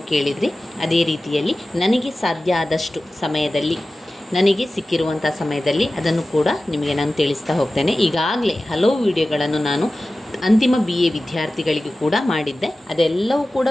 ಕೇಳಿದ್ರಿ. ಅದೇ ರೀತಿಯಲ್ಲಿ ನನಗೆ ಸಾಧ್ಯ ಆದಷ್ಟು ಸಮಯದಲ್ಲಿ, ನನಗೆ ಸಿಕ್ಕಿರುವಂಥ ಸಮಯದಲ್ಲಿ ಅದನ್ನು ಕೂಡ ನಿಮಗೆ ನಾನು ತಿಳಿಸ್ತಾ ಹೋಗ್ತೇನೆ. ಈಗಾಗಲೇ ಹಲವು ವಿಡಿಯೋಗಳನ್ನು ನಾನು ಅಂತಿಮ BA ವಿದ್ಯಾರ್ಥಿಗಳಿಗೂ ಕೂಡ ಮಾಡಿದ್ದೆ. ಅದೆಲ್ಲವೂ ಕೂಡ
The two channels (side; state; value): both; normal; correlation 0.96